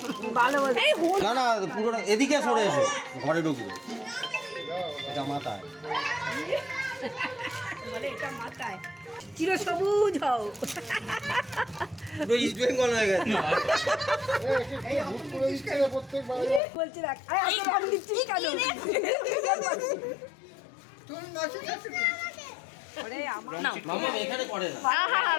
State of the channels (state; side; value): drops out; right; at 16.6 s